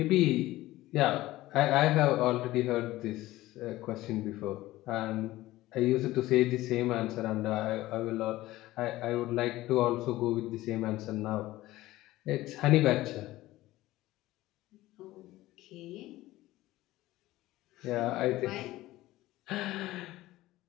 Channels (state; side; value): quieter; right; 17.0 dB